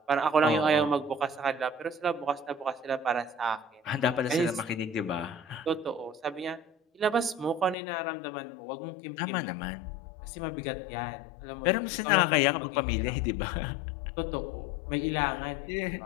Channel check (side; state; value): right; drops out; at 7.8 s